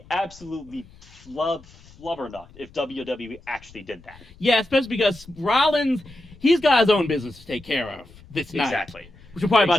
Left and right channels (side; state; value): left; noise; rumble, 23 dB below the sound